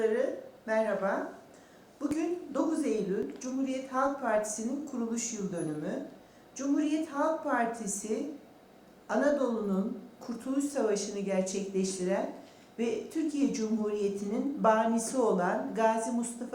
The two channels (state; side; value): identical; both; correlation 1.00